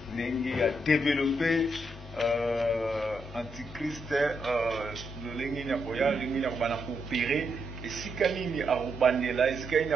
Nengi a développé Antichrist, le Lengi Nyakoya, Lengi Nyakobana coopérer, et si Kanini a Rubandela, et si Kanini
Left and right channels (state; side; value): normal; both; correlation 0.80